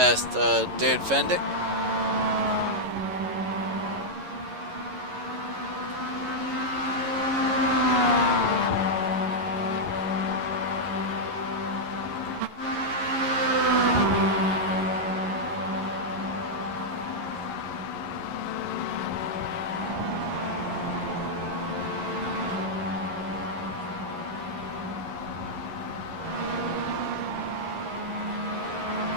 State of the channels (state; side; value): late; left; 11 ms